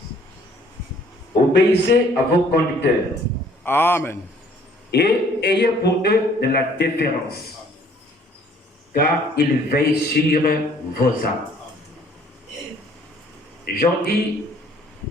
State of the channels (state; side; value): normal; both; correlation 0.59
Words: Obéissez à vos conducteurs. Amen. Et ayez pour eux de la déférence, car ils veillent sur vos âmes. Jean dit,